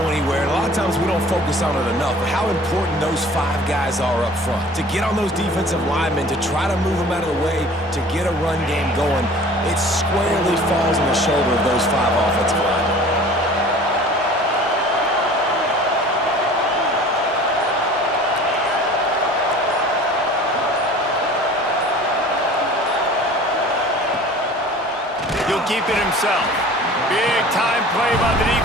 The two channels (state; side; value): normal; both; correlation 0.45